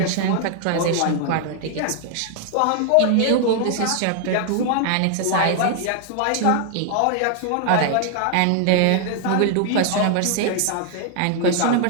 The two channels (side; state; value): both; different; correlation 0.00